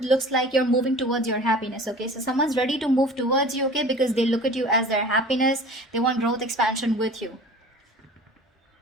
like you're moving towards your happiness, okay? So someone's ready to move towards you, okay? Because they look at you as their happiness. They want growth, expansion with you.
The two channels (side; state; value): both; normal; correlation 0.42